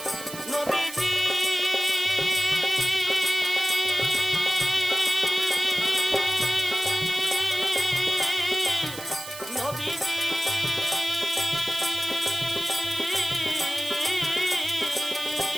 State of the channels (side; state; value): right; noise; hiss, 12 dB below the sound